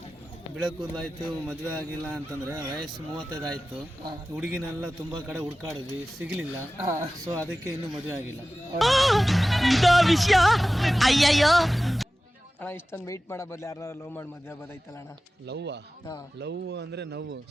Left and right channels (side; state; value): both; normal; correlation 0.96